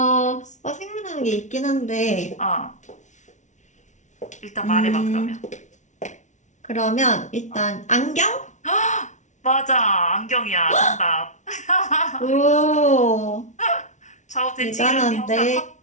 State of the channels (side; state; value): right; late; 0.35 ms